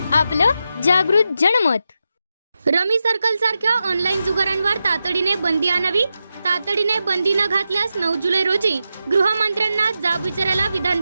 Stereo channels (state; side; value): inverted; both; correlation -0.89